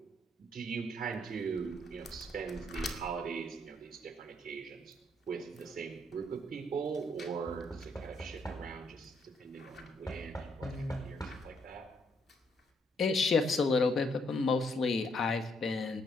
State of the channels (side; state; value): both; normal; correlation 0.72